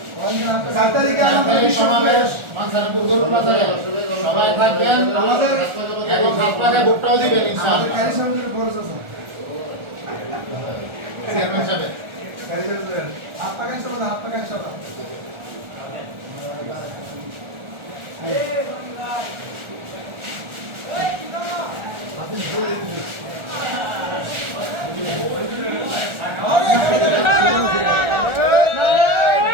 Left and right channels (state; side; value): late; left; 1.4 ms